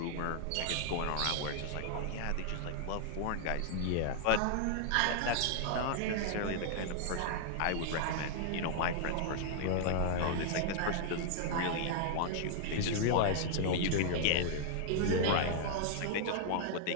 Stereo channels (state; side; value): different; both; correlation -0.01